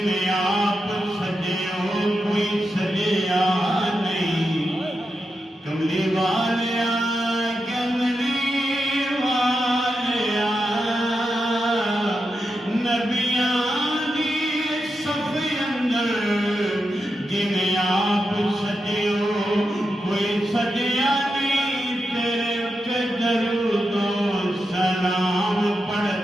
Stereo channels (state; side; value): normal; both; correlation 0.87